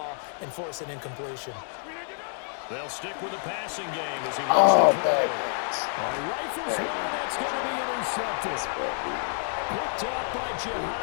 and force an incompletion. They'll stick with the passing game as he looks to throw. Rifles one, that's going to be intercepted. Picked up by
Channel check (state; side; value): silent; right; 59 dB below the other